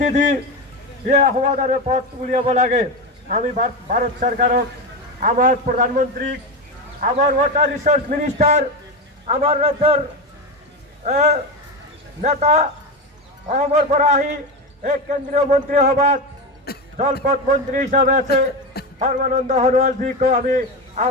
দি ইয়ে সমাধানের পথ উলিয়াব লাগে। আমি ভারত সরকারক, আমার প্রধানমন্ত্রী, আমার ওয়াটার রিসোর্স মিনিস্টার, আমার রাজ্যের নেতা অসমৰ পৰা আহি এক কেন্দ্ৰীয় মন্ত্ৰী সভাত জলপথ মন্ত্ৰী হিসাবে আছে সৰ্বানন্দ সোণোৱালজীকো আমি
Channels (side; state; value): both; normal; correlation 0.17